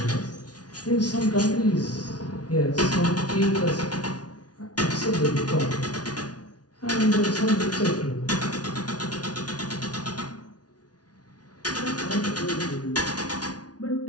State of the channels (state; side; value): late; right; 0.69 ms